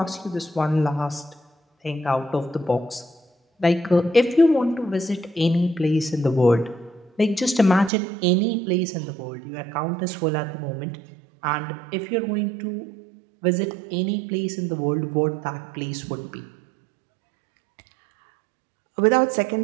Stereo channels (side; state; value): left; drops out; at 7.9 s